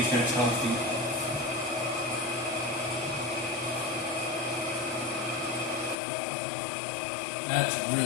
that's healthy. That's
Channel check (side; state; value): right; drops out; at 6.0 s